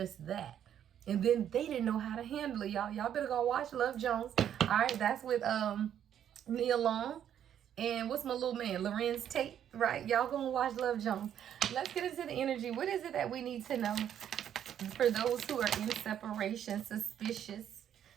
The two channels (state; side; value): quieter; left; 9.8 dB